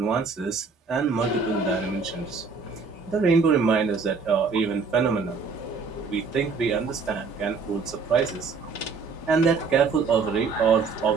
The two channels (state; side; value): quieter; left; 4.8 dB